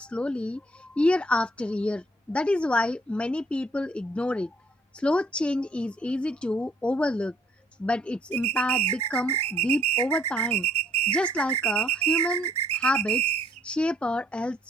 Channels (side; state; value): both; normal; correlation 0.64